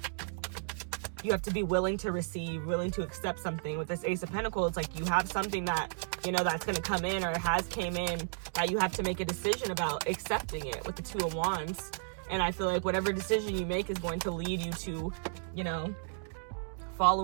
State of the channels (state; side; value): silent; left; digital silence